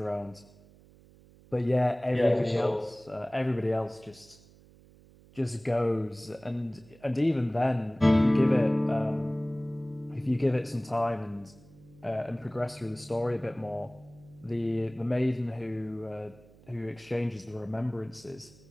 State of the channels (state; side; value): noise; right; hum, 25 dB below the sound